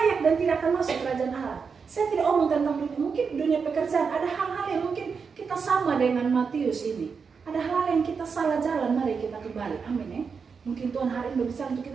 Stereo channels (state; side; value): quieter; left; 5.6 dB